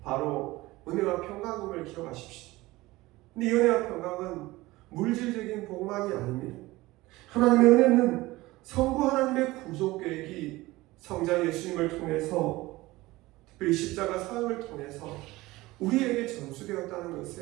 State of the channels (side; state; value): left; quieter; 19.5 dB